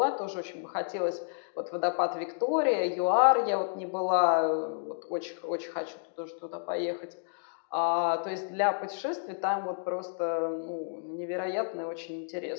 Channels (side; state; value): right; silent; digital silence